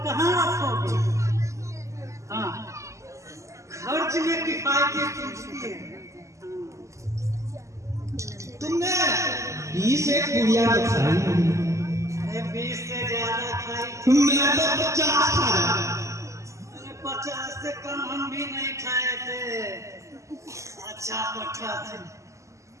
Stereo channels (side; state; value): left; late; 0.15 ms